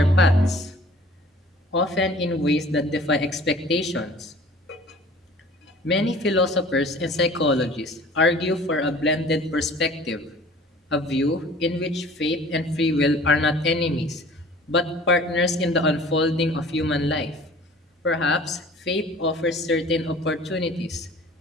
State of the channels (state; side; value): normal; both; correlation 0.48